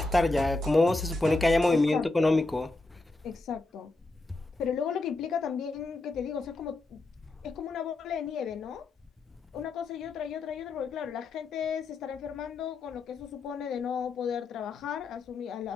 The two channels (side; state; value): right; quieter; 3.2 dB